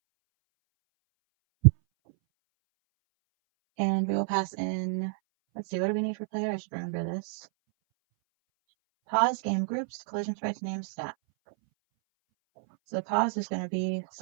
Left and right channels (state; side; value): silent; left; 58 dB below the other